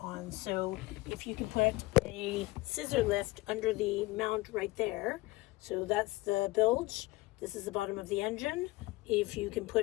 So if you can put a scissor lift under the mount right there, so that's the bilge, this is the bottom of the engine. If you can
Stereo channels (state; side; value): quieter; right; 20.8 dB